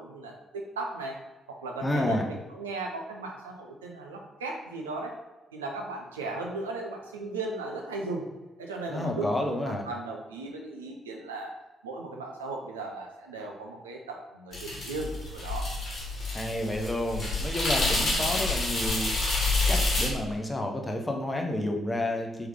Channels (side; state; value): both; normal; correlation 0.72